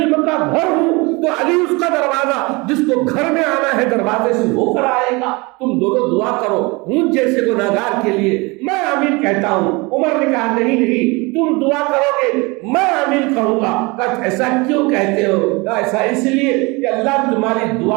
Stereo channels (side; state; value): left; quieter; 26.1 dB